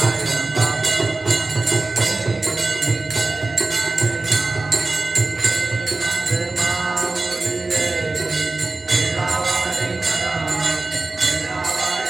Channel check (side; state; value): left; quieter; 3.3 dB